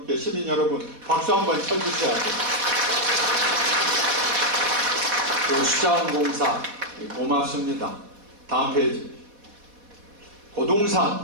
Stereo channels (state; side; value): late; left; 4.1 ms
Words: 시민 여러분 박수 한번 쳐주셔야 돼요. 그 수자원공사 고맙습니다. 다음 페이지.